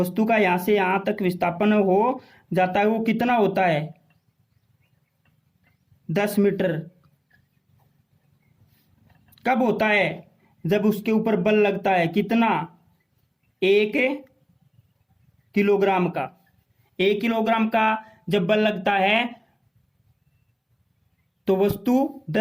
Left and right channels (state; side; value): identical; both; correlation 1.00